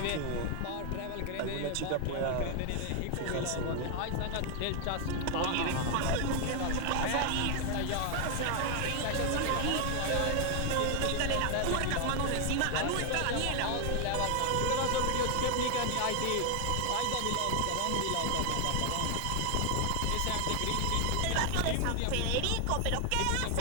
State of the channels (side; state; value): both; different; correlation 0.00